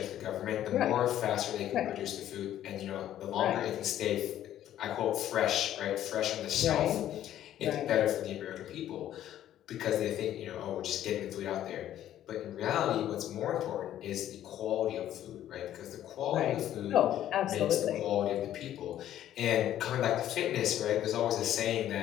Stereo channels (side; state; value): right; quieter; 11.9 dB